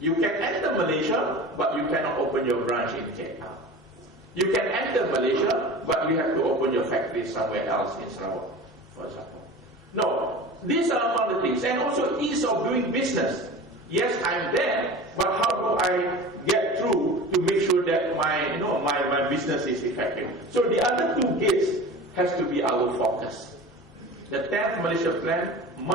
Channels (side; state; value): both; normal; correlation 0.36